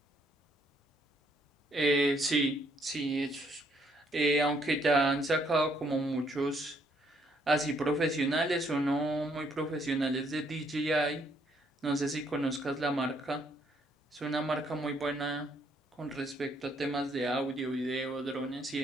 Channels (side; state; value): both; normal; correlation 0.70